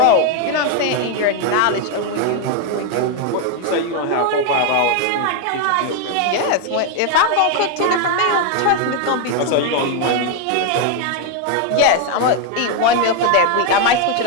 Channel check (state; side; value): different; both; correlation 0.01